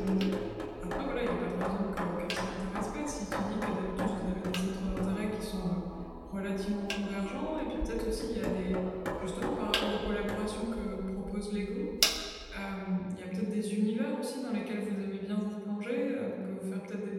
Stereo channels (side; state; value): both; identical; correlation 1.00